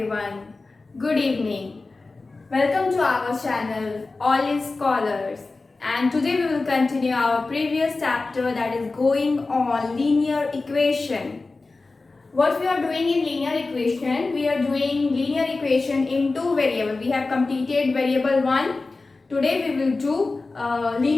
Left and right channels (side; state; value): right; quieter; 3.6 dB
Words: good evening. Welcome to our channel All is Scholars, and today we will continue our previous chapter that is going on linear equation. What we are doing in linear equation, we are doing linear equation in two variables. We have completed variable 1. Today we will do